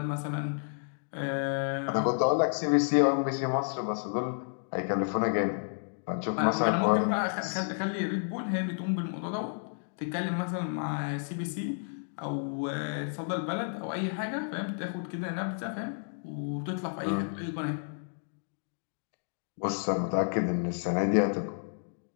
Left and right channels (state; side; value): silent; right; digital silence